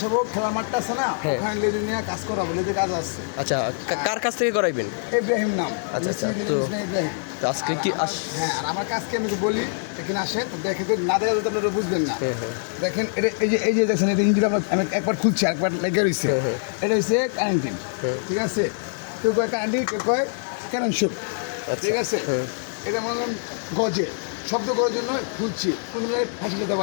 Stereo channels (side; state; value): right; silent; digital silence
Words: খেলার মাঠটা আছে না, হ্যাঁ। ওখানে লেজে নিয়ে কাজ করাবো, লেজে কাজ আসছে। আচ্ছা, কার কাছ থেকে করাইবেন? ইব্রাহিম নাম। আচ্ছা, আচ্ছা। মিস্ত্রি তো ইব্রাহিম। তো আজকে কি হ্যাঁ, আর আমার কাজকে আমি বলি, এখানে আসেন দেখে তো না দেখা আপনারা বুঝবেন না। হ্যাঁ, হ্যাঁ। দেখেন এটা এই যে দেখছেন এটা ইঞ্জিন আমি একবার খুলছি একবার লেগে রয়েছে। হ্যাঁ, হ্যাঁ। এটা হচ্ছে কারেন্টিন, ঠিক আছে। কেউ কয় কারেন্টিন, কেউ কয় কারেন্ট শুট, আচ্ছা, ঠিক আছে। হ্যাঁ। এটা মনে করেন গজে শব্দ করার জন্য খুলছি, কোনো জায়গায় ফাঁসি যেতে